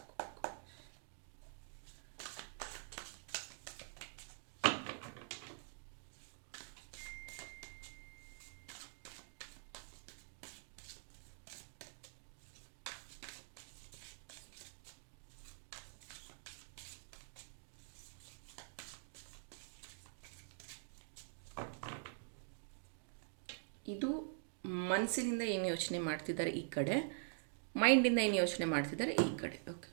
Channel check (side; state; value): left; silent; digital silence